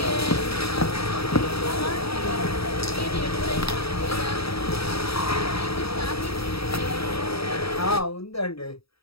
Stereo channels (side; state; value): right; late; 0.76 ms